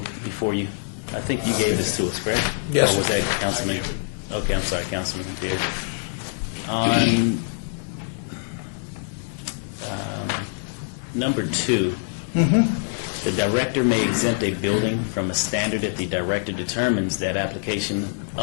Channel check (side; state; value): right; silent; 62 dB below the other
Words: before you? I think you gave this to us, correct? Yes. Or was that Councilman? Okay, I'm sorry, Councilman Beard. On number 2, the director may exempt a building from a standard if the director determines that application